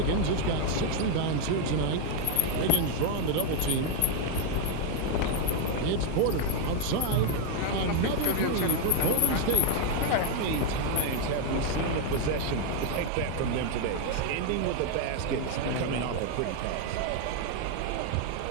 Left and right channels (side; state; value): both; different; correlation 0.01